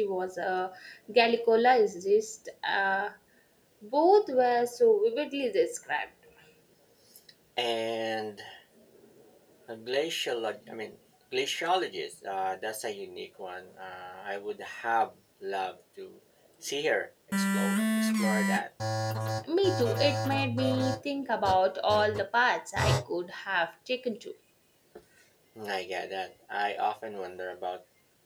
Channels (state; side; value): identical; both; correlation 1.00